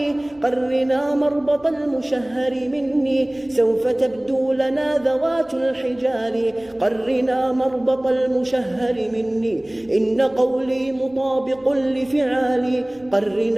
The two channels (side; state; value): left; noise; rumble, 28 dB below the sound